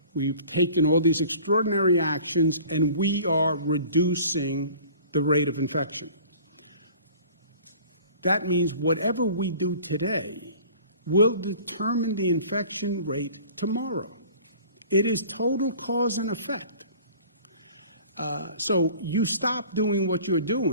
We've taken all these extraordinary actions, and we are reducing the rate of infection. That means whatever we do today will determine the infection rate tomorrow. It is total cause and effect. So you stop doing what you're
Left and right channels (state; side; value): inverted; both; correlation -0.47